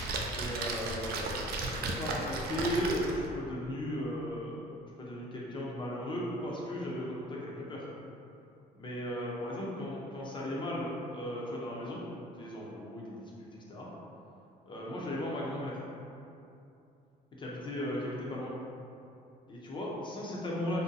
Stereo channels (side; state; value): both; normal; correlation 0.50